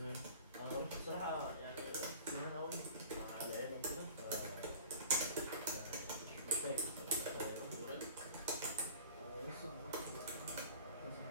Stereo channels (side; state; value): both; inverted; correlation -0.42